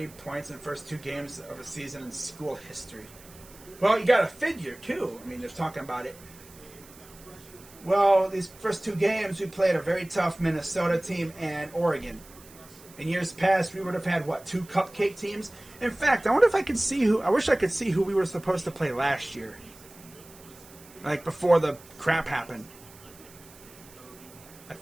points in the first 2 games of a season in school history. Well, you got to figure, too. I mean, they're talking about it. Well, these first 2 games, we played a very tough Minnesota team and Oregon. In years past, we would have had, 2 cupcake teams? In fact, I wonder if I could see I wish I could see who we were supposed to play last year. Like, before the crap happened. I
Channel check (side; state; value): right; noise; hiss, 22 dB below the sound